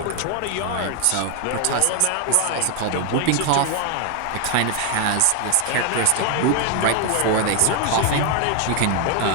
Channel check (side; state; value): both; different; correlation 0.00